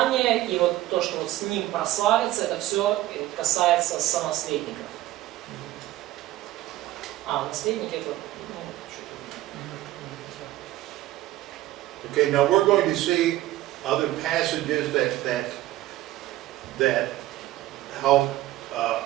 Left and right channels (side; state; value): left; quieter; 15.4 dB